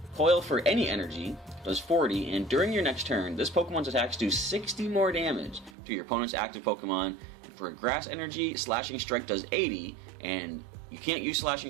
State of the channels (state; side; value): drops out; left; at 5.8 s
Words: Coil for any energy does 40, and during your next turn, this Pokemon's attacks do 60 more damage to your opponent's active Pokemon. For a Grass energy, Slashing Strike does 80, and you can't use